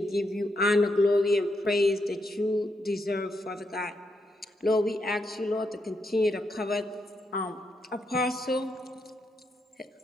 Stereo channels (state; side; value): normal; both; correlation 0.81